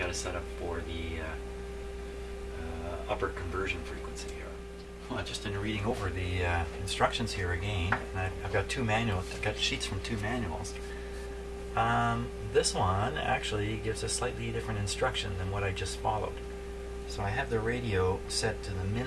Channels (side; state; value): both; identical; correlation 1.00